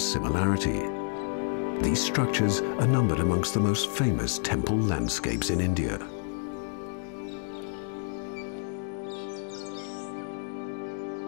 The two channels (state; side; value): silent; right; digital silence